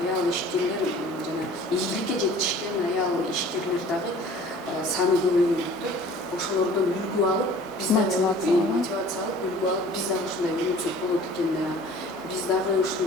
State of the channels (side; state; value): both; normal; correlation 0.48